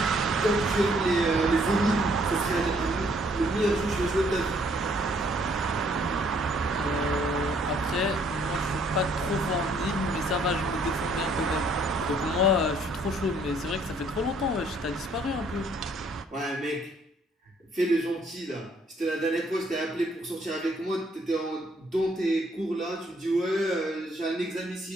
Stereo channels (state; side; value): normal; both; correlation 0.64